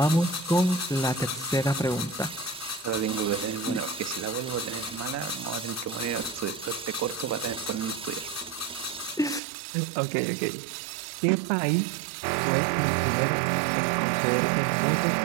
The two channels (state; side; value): drops out; left; at 9.4 s